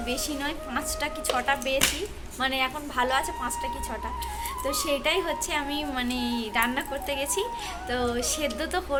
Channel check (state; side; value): identical; both; correlation 1.00